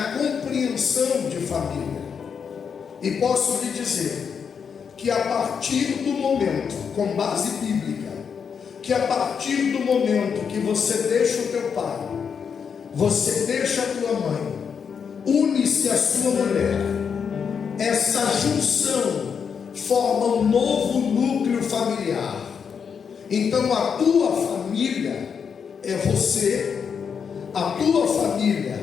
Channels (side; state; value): right; quieter; 6.7 dB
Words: compreensão de família. E posso lhe dizer que a partir do momento, com base bíblica, que a partir do momento que você deixa o teu pai, você deixa a tua mãe, une-se a sua mulher, essa junção forma um novo núcleo familiar. Então a tua família é você, a tua família